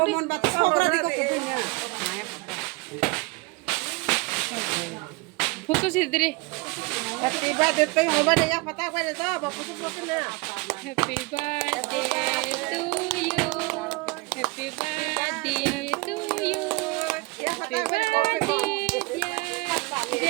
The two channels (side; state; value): left; quieter; 25.6 dB